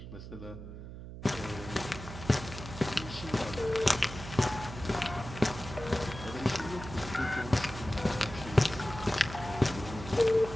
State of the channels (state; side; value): noise; right; hum, 11 dB below the sound